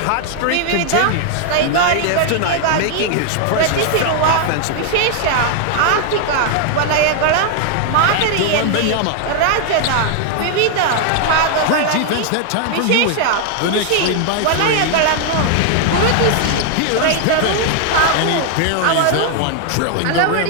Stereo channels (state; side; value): different; both; correlation 0.00